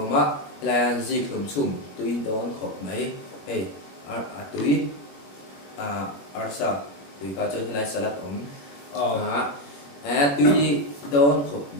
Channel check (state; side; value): late; right; 21 ms